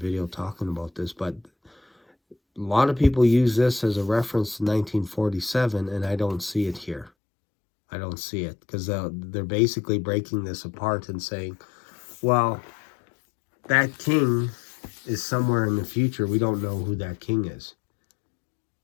talking about this, but a lot of people use this as a reference to 1947, and I don't see it here. I don't see it, because they're basically breaking this apart and saying, well, that king is somewhere in the future. We don't know who that king is.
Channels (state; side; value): drops out; right; at 7.1 s